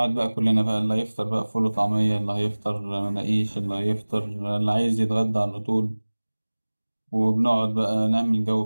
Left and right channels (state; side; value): inverted; both; correlation -1.00